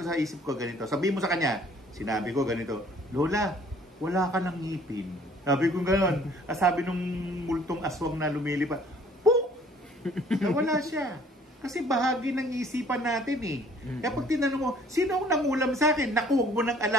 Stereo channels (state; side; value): normal; both; correlation 0.56